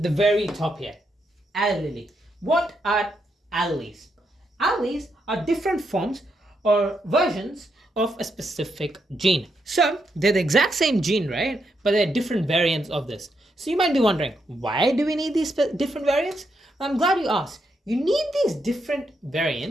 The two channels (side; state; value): both; normal; correlation 0.80